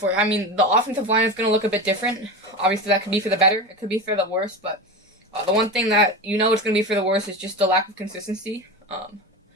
I mean, the offensive line is gonna look a bit different. Obviously, that could be for the better, it could be for the worse, but the one thing that it's going to be for the worst is just the lack of consistency.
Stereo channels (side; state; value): both; normal; correlation 0.25